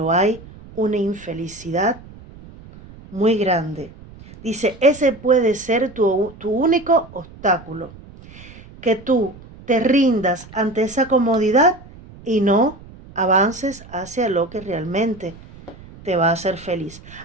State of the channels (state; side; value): noise; right; rumble, 19 dB below the sound